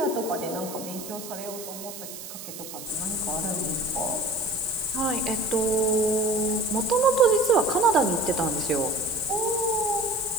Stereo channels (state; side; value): noise; right; hiss, 11 dB below the sound